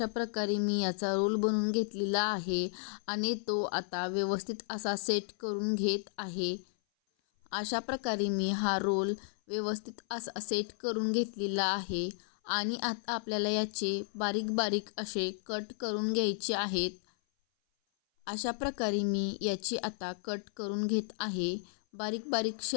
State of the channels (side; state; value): right; silent; 56 dB below the other